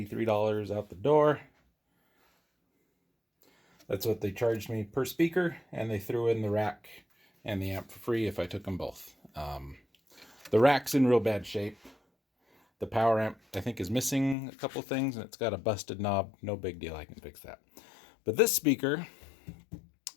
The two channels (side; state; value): right; drops out; at 14.4 s